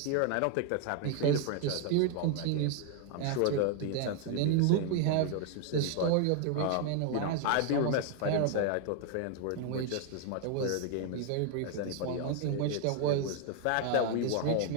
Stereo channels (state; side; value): different; both; correlation 0.00